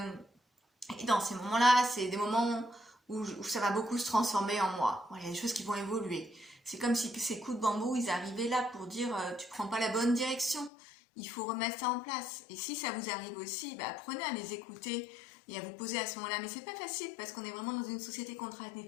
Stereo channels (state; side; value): drops out; right; at 10.7 s